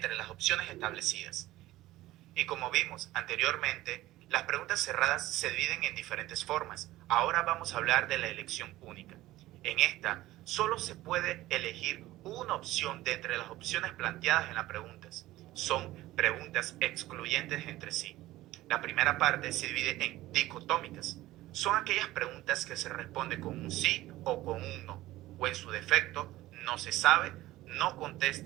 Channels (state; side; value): quieter; left; 16.6 dB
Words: las opciones establecidas. Y como vimos anteriormente, las preguntas cerradas se dividen en diferentes formas. Ahora vamos a hablar de la elección única. En esta, solo se puede elegir una opción de entre las opciones planteadas en las preguntas. Son preguntas excluyentes entre sí. La primera parte se divide en dicotómicas. Son aquellas preguntas que se responden con un sí o con un no, o en su defecto, no se sabe, no